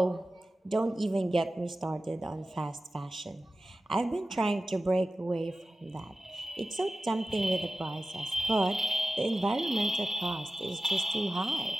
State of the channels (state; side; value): normal; both; correlation 0.95